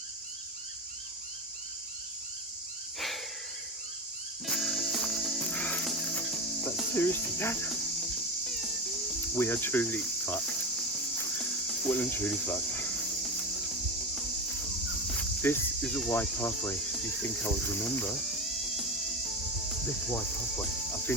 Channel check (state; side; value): normal; both; correlation 0.19